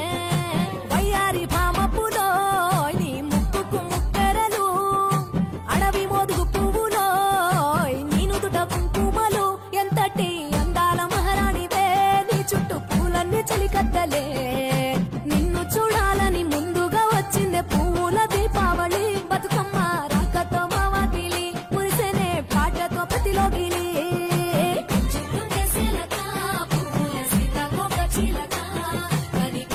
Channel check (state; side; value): identical; both; correlation 1.00